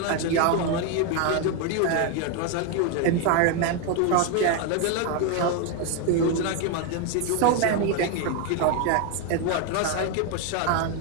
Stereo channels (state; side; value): different; both; correlation 0.01